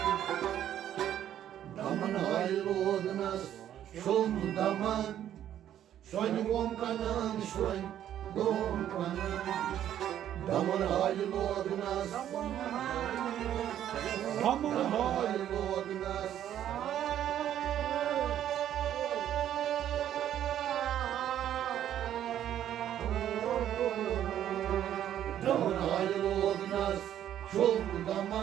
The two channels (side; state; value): left; quieter; 11.0 dB